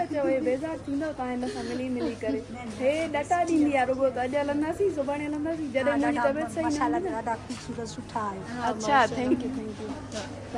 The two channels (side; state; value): both; identical; correlation 1.00